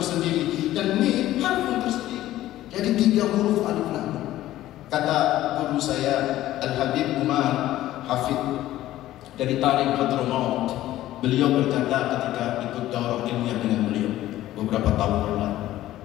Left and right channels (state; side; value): quieter; right; 14.6 dB